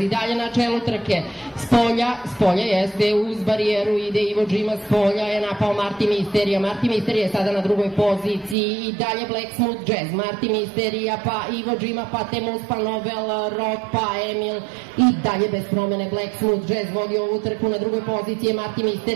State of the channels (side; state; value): left; drops out; at 8.6 s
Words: dalje na čelu trke, s polja jeste uz barijeru, ide Ivo Džima s polja, je napao Martin Misterija je sada na drugoj poziciji i dalje Black Smooth Jazz, Martin Misterija, pa Ivo Džima, pa Temuz, pa Novel Rock, pa Emil i dalje bez promene Black Smooth Jazz vodi ovu trku, na drugoj poziciji je Martin